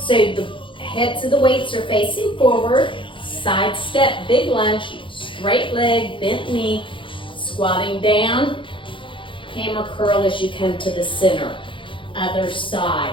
the heads of the weights are facing forward, side step, big lunge, straight leg, bent knee, squatting down, hammer curl as you come to the center. Other side.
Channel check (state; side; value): late; right; 0.25 ms